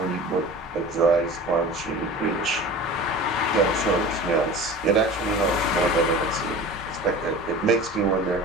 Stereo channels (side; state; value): both; normal; correlation 0.37